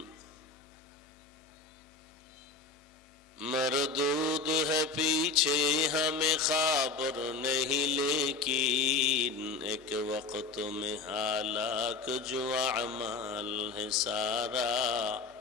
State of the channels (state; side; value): quieter; right; 4.2 dB